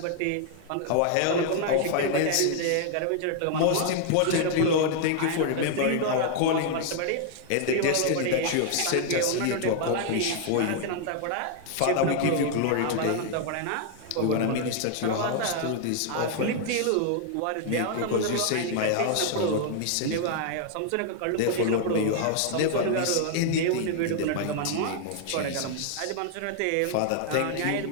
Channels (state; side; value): different; both; correlation 0.00